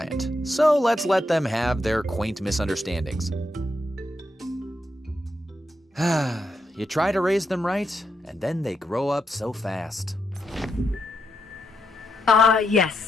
so let's let them have their quaint misunderstandings. You try to raise them right, and then they grow up so fast.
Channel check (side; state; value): both; normal; correlation 0.82